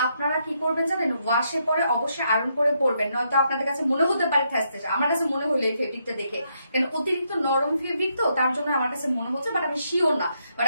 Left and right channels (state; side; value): inverted; both; correlation -0.77